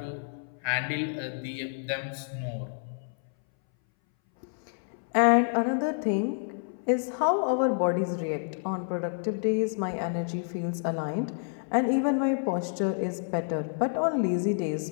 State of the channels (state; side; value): silent; right; 59 dB below the other